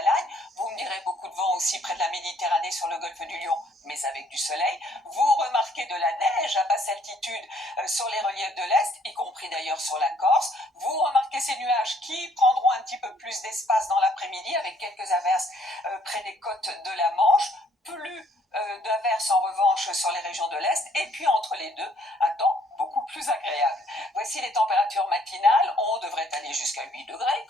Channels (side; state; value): both; normal; correlation 0.64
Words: Vous me direz beaucoup de vent aussi près de la Méditerranée sur le golfe du Lion, mais avec du soleil. Vous remarquez de la neige à basse altitude sur les reliefs de l'Est, y compris d'ailleurs sur la Corse. Vous remarquez ces nuages qui prendront un petit peu plus d'espace dans l'après-midi avec quelques averses près des côtes de la Manche. Plus d'averses en revanche sur les régions de l'Est, et puis entre les deux, un temps beaucoup plus agréable. Voici les températures matinales. On devrait aller jusqu'à 8 degrés